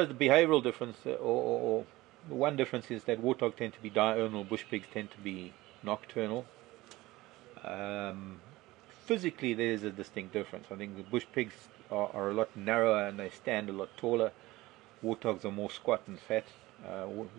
the behavioural difference, or the one difference is that warthogs tend to be diurnal, bush pigs tend to be nocturnal. Physically, there is a distinct difference. I think the bush pigs are a lot narrower and they stand a lot taller. Warthogs are more squat and fat.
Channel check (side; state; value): left; quieter; 19.0 dB